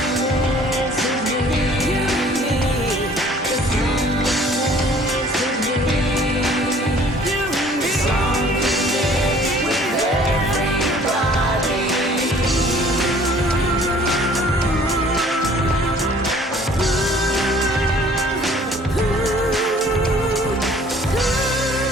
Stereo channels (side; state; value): both; normal; correlation 0.54